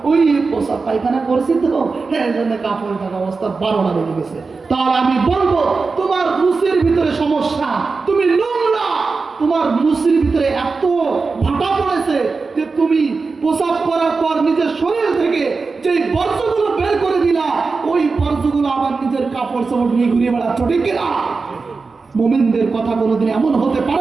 ওই পোশাক পায়খানা করছি তো এই জন্য কাপড় থাকা অবস্থা 12টা বেজে গেছে, তাহলে আমি বলবো তোমার মুসির ভিতরে সমস্যা, তুমি নোংরা, তোমার মুসির ভিতরে এত ভাটা পড়েছে যে তুমি পোশাক করার পর নিজের শরীর থেকে যে বর্জ্যগুলো বের করে দিলা, ওই বর্জ্যগুলো আবার নিজের কাপড় চোপড় নিয়ে ঘুরিয়ে বেড়াচ্ছ, ঠিক কিনা? মুমিনদের কথা কোনোদিন এমন হতে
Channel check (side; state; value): left; quieter; 4.3 dB